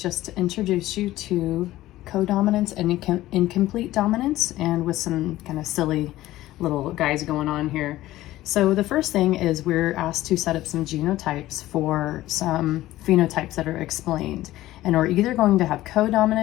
to introduce you to codominance and incomplete dominance, and with some kind of silly little guys going on here. So the first thing is we're asked to set up some genotypes for some phenotypes that are explained. And we're either going to have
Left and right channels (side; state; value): right; quieter; 15.7 dB